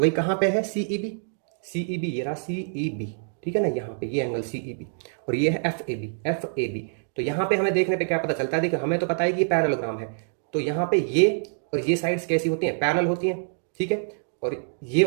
कहाँ पे है CEB ये रहा CEB, ठीक है ना, यहाँ पे ये एंगल CEB और ये है FAB। तो यहाँ पे हमें देखने पे क्या पता चलता है, देखिए हमें तो पता है कि ये पैरेललोग्राम है, तो यहाँ पे ये और ये साइड्स कैसी होती हैं, पैरेलल होती हैं, ठीक है, और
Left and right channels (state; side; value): silent; left; digital silence